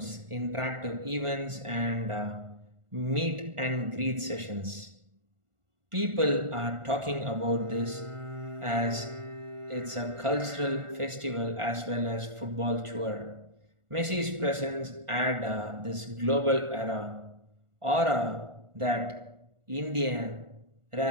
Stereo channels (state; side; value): late; left; 1.4 ms